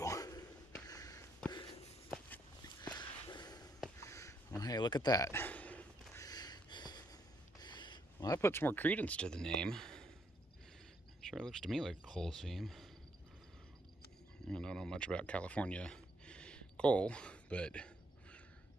Well, hey, look at that. Well, that puts more credence to the name. Sure looks to me like a coal seam. I don't know much about California coal, but it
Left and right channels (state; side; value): normal; both; correlation 0.73